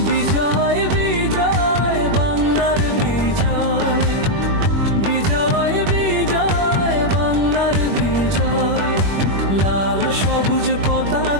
বিজয় বিজয় বাংলার বিজয়, বিজয় বিজয় বাংলার বিজয়। লাল সবুজ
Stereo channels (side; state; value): left; late; 21 ms